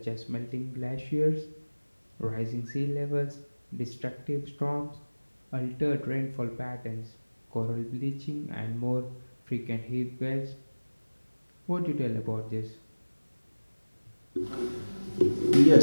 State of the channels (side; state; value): both; inverted; correlation -1.00